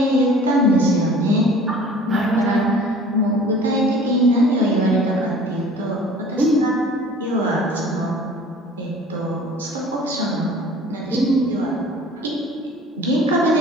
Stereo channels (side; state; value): both; normal; correlation 0.48